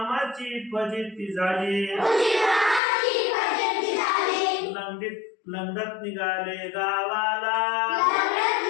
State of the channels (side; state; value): right; drops out; at 2.8 s